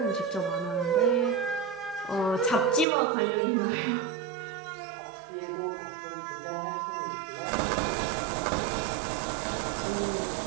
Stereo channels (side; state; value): left; drops out; at 2.9 s